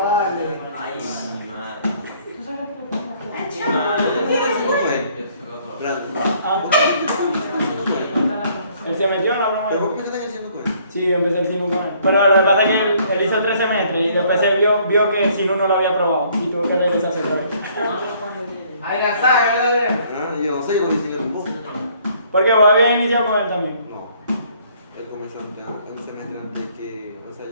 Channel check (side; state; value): both; inverted; correlation -0.62